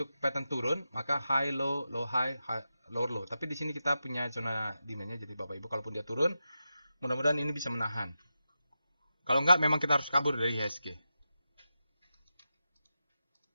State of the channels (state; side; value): inverted; both; correlation -0.90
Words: pattern turun, maka high low, low high, lower low. Tapi di sini kita punya zona demand-nya. Jadi Bapak Ibu kalaupun dia turun, mudah-mudahan ini bisa menahan. Kalau enggak memang kita harus kabur dari IHSG.